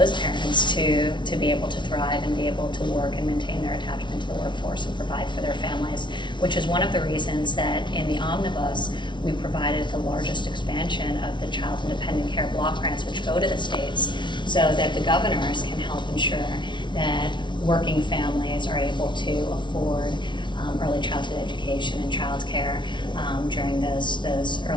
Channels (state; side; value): late; right; 0.23 ms